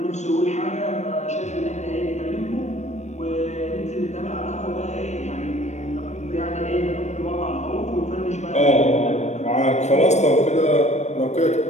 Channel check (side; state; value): right; late; 0.33 ms